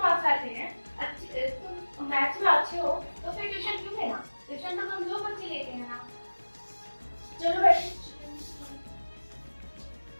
आते हैं, तुम मैथ्स में अच्छे हो, तो फिर ट्यूशन क्यों लेना? ट्यूशन तो कमजोर बच्चे लेते हैं ना। चलो बैठो।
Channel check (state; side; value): inverted; both; correlation -1.00